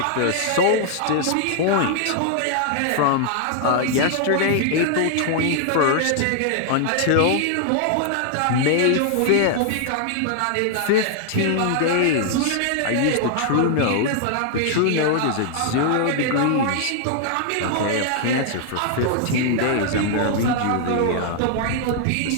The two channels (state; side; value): different; both; correlation -0.01